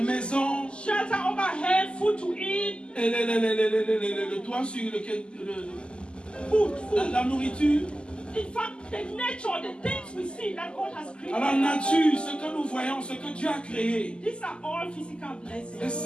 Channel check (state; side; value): late; right; 0.050 ms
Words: shelter overhead, food to eat, et le toit sur lequel food. la nourriture. In fact, the nature, the things we see that God has created. Alors la nature, ce que nous voyons, ce que Dieu a créé, These are all physical et blessings.